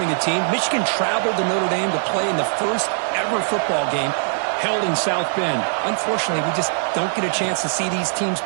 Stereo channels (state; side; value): silent; left; digital silence